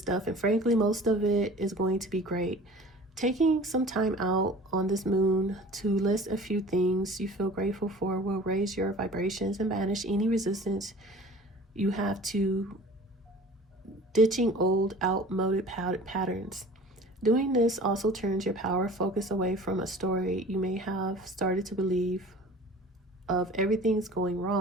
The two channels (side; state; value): both; normal; correlation 0.43